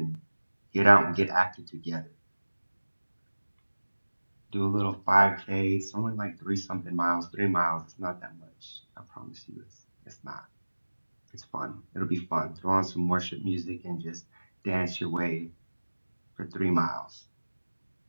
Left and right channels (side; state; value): both; inverted; correlation -1.00